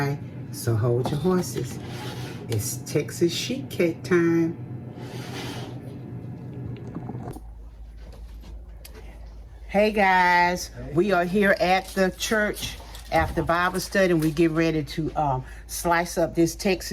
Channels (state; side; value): identical; both; correlation 1.00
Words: So hold your horses. It's Texas sheet cake time. Hey guys, we are here at the church after Bible study, and we get ready to slice up this